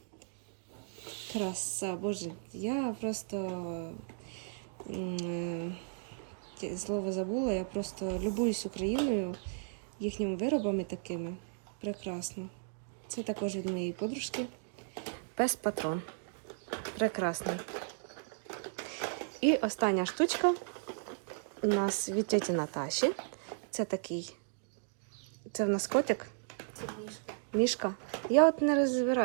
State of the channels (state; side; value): silent; left; digital silence